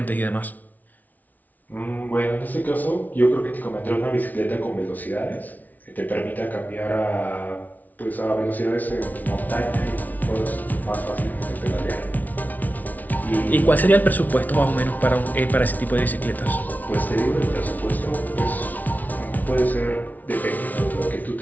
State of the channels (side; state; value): right; late; 0.077 ms